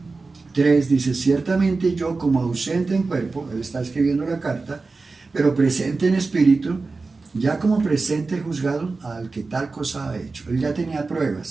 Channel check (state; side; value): quieter; left; 3.9 dB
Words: 3, dice: ciertamente yo, como ausente en cuerpo, él está escribiendo la carta, pero presente en espíritu, ya como presente he juzgado al que tal cosa ha hecho. Él ya tenía